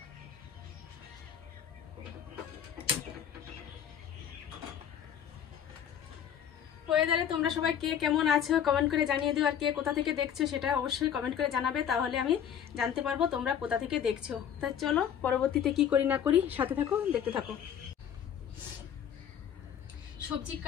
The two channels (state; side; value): quieter; right; 8.9 dB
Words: ওয়েদারে তোমরা সবাই কে কেমন আছো কমেন্ট করে জানিয়ে দিও। আর কে কোথা থেকে দেখছো সেটা অবশ্যই কমেন্ট করে জানাবে, তাহলে আমি জানতে পারবো তোমরা কোথা থেকে দেখছো। তাই চলো, পরবর্তীতে কি করি না করি সাথে থাকো, দেখতে থাকো। সবজি